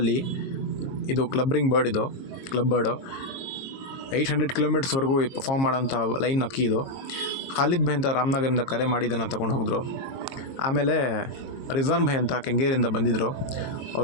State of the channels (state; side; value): late; right; 22 ms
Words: ಇದು ಕ್ಲಬ್ರಿಂಗ್ ಬರ್ಡ್, ಇದು ಕ್ಲಬ್ ಬರ್ಡು 800 ಕಿಲೋಮೀಟರ್ಸ್ವರೆಗೂ ಪರ್ಫಾರ್ಮ್ ಮಾಡೋಂಥ ಲೈನ್ ಅಕ್ಕಿ ಇದು. ಖಾಲಿದ್ ಭಾಯ್ ಅಂತ ರಾಮನಗರದಿಂದ ಕರೆ ಮಾಡಿದ್ದನ್ನು ತೊಗೊಂಡು ಹೋಗಿದ್ರು. ಆಮೇಲೆ ರಿಜ್ವಾನ್ ಭಾಯ್ ಅಂತ ಕೆಂಗೇರಿಯಿಂದ ಬಂದಿದ್ದರು.